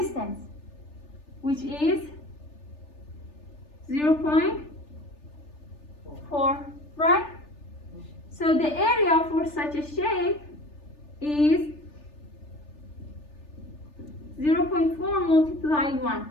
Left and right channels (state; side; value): late; right; 3.4 ms